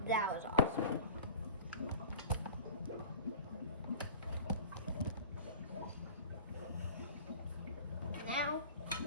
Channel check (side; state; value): both; inverted; correlation -0.39